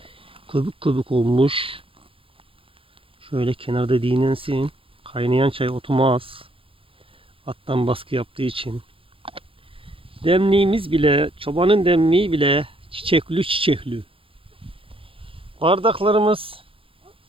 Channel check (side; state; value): left; late; 0.26 ms